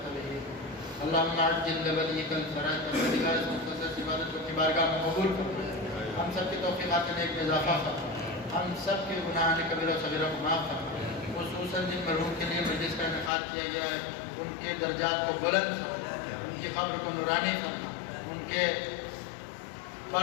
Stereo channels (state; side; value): drops out; right; at 13.3 s